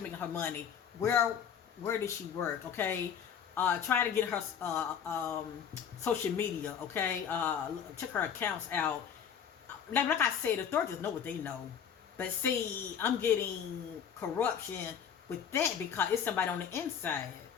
making her money. Where does she work? Okay, try to get her social media. Okay, check her accounts out. Like I said, the authorities know what they know. But see, I'm getting corruption with that because it's somebody on the inside.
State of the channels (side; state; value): right; quieter; 7.9 dB